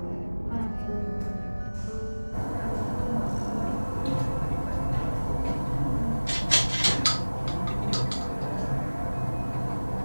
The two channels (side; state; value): both; inverted; correlation -1.00